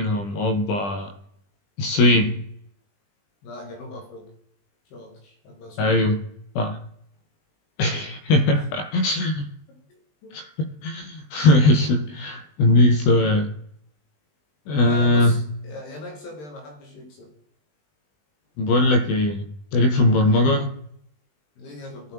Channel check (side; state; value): right; late; 20 ms